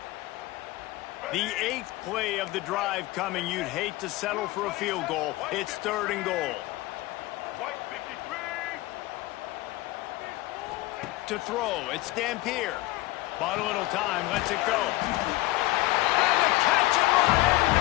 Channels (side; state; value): right; quieter; 18.7 dB